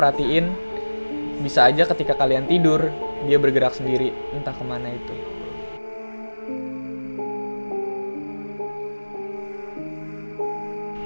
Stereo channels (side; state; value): both; inverted; correlation -1.00